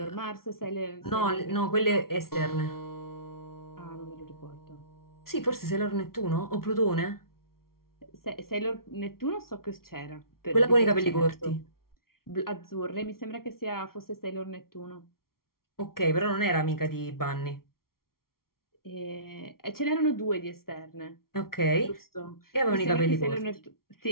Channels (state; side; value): late; right; 0.93 ms